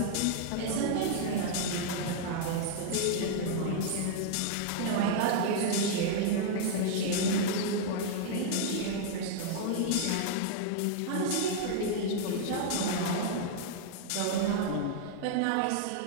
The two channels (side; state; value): both; different; correlation -0.01